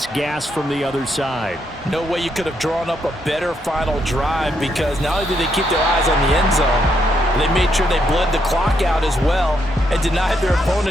gasp from the other side. No way you could have drawn up a better final drive because not only did they keep their eyes on the end zone, they made sure they bled the clock out as well and denied their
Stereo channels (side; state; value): both; normal; correlation 0.77